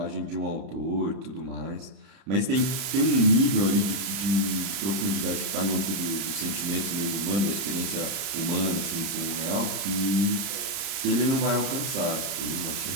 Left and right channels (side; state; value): left; late; 31 ms